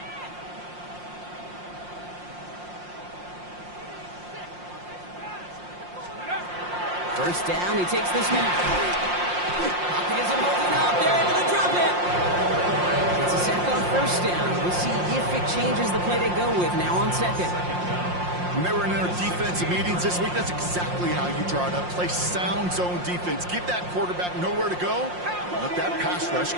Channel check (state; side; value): late; left; 5.6 ms